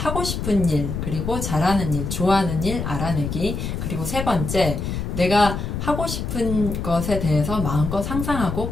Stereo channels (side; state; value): left; noise; rumble, 4 dB below the sound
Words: 싶은 일, 그리고 잘하는 일, 좋아하는 일 알아내기. 그리고 세 번째, 내가 하고 싶은 것에 대해서 마음껏 상상하고